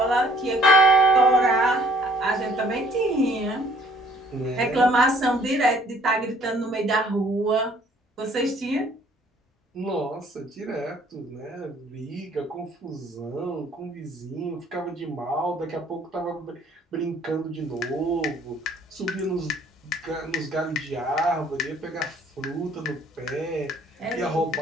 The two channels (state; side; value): normal; both; correlation 0.59